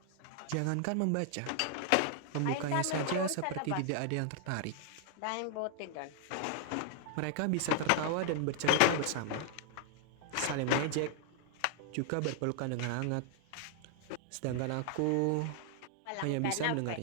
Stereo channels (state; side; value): different; both; correlation 0.00